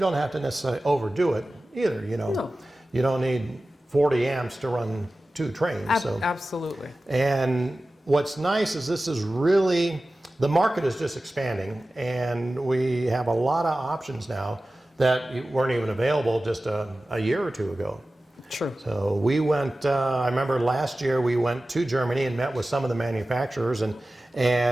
don't have to necessarily overdo it either. No. You don't need 40 amps to run 2 trains. Absolutely. And what's nice is this is really, the market is just expanding, and we have a lot of options now that weren't even available just a year or 2 ago. True. So we went, I remember last year we went to Germany and met with some of the manufacturers and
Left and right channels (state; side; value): normal; both; correlation 0.96